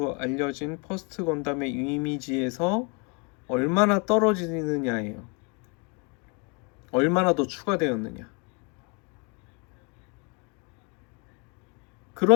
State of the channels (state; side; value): quieter; right; 33.3 dB